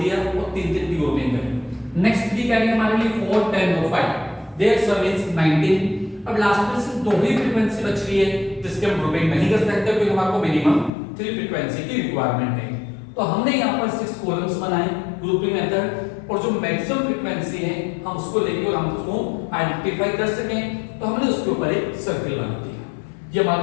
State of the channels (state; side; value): drops out; right; at 10.9 s